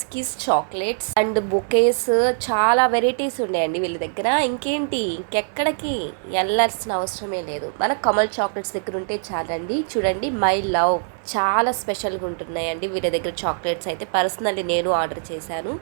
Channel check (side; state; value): left; silent; 61 dB below the other